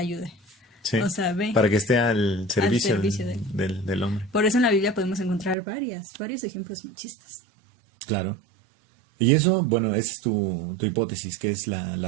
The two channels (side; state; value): left; drops out; at 5.6 s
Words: ayude. Sí, o sea, ve, para que esté al servicio, del hombre. Por eso en la Biblia podemos encontrar varios ejemplos machistas. Claro. Y eso, bueno, esa es tu hipótesis, que es